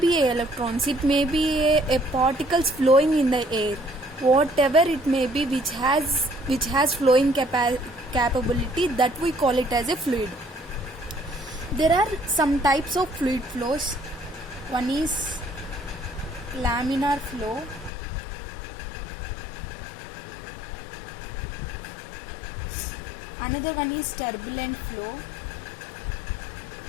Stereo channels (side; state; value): right; drops out; at 17.9 s